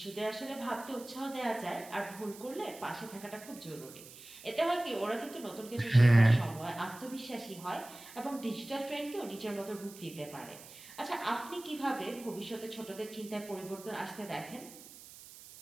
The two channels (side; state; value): right; noise; hiss, 17 dB below the sound